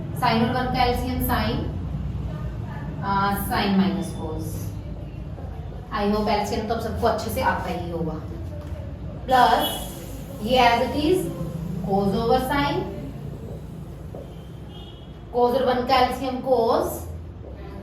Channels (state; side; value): identical; both; correlation 1.00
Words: साइन और 1 का LCM sine minus cos. I hope LCM तो अब सबको अच्छे से आता ही होगा। प्लस ये as it is cos over sine, cos और 1 का एलसीएम कोस